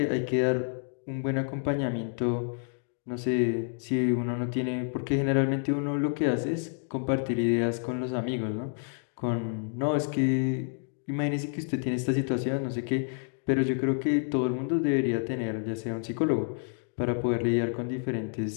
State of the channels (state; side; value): silent; right; 59 dB below the other